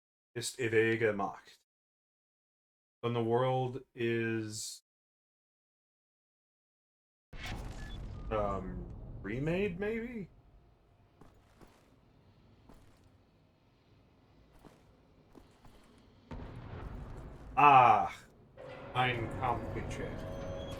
Ist ewige Macht. Then the world is remade, maybe? Ah, ein Kampfchair.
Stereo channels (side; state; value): both; identical; correlation 1.00